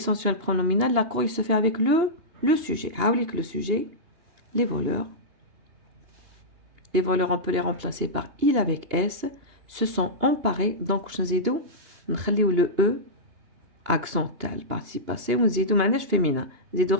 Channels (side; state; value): left; late; 2.8 ms